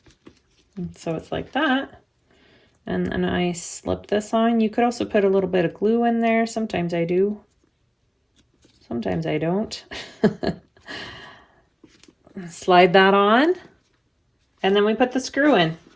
And so it's like that. And then I slip this on. You could also put a little bit of glue in there. Sometimes I do. Sometimes I don't. Slide that on. And then we put the screw in.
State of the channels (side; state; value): both; identical; correlation 1.00